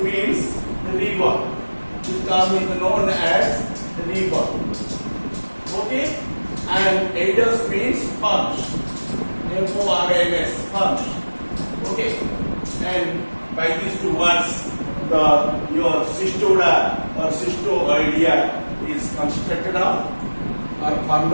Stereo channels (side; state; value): both; inverted; correlation -1.00